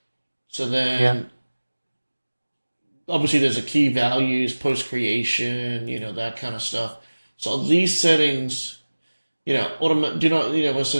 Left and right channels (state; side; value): inverted; both; correlation -1.00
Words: So then, obviously there's a key values, post creation, that kind of stuff. So these settings, do not, when it